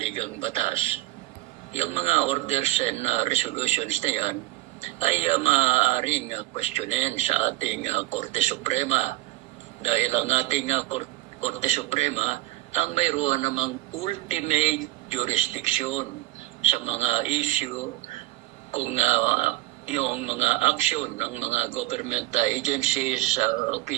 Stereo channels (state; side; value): quieter; left; 18.5 dB